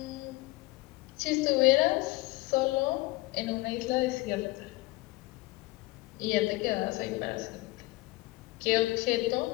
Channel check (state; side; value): quieter; right; 21.5 dB